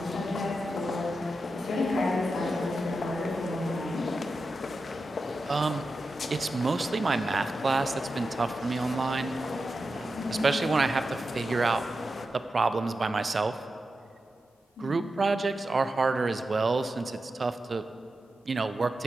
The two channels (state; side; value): normal; both; correlation 0.90